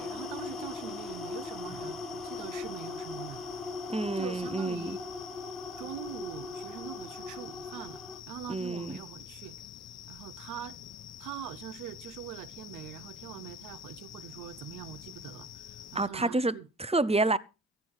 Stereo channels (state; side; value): normal; both; correlation 0.49